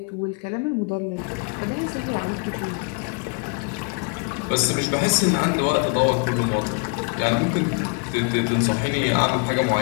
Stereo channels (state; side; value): quieter; right; 34.3 dB